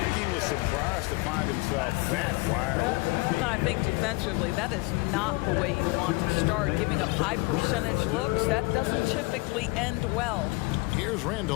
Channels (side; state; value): right; quieter; 25.0 dB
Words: he was surprised to find himself that wide open. I think defensively, that is not the way you want to start. Giving up high percentage looks, that doesn't typically end well. Here's